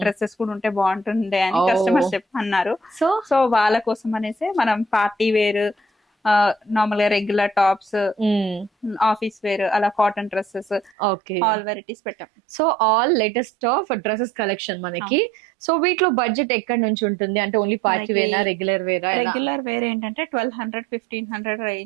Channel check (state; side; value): drops out; left; at 10.9 s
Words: డ్రెస్సెస్ కూడా ఉంటే బాగుంటుండే అని కస్టమర్స్ అన్నారు. సో వాళ్ళ కోసం అనేసి మనం పార్టీ వేర్, నార్మల్ గా రెగ్యులర్ టాప్స్, ఆఫీస్ వేర్, అలా కాటన్ డ్రెస్సెస్, ఆల్ వెరైటీస్ పెట్టాం. So all latest of dresses collection మనకి. సో వీటిలో బడ్జెట్ ఎక్కడి నుంచి ఉంటుంది? అంటే ఓన్లీ పార్టీ వేరా, రెగ్యులర్ వేరా? రెగ్యులర్ వేర్ ఏంటంటే 1200-1500